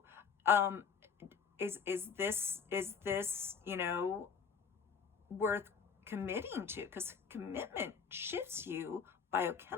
is this, you know, worth committing to? Because commitment shifts you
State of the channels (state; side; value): quieter; right; 6.2 dB